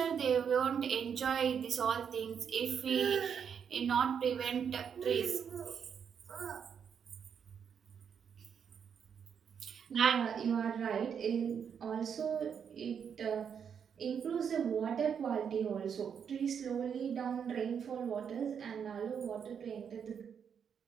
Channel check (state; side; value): quieter; left; 7.4 dB